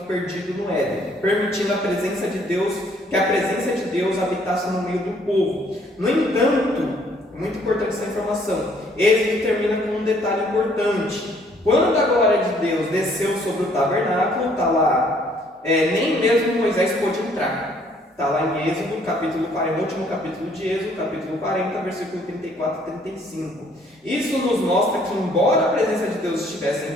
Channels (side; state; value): both; normal; correlation 0.63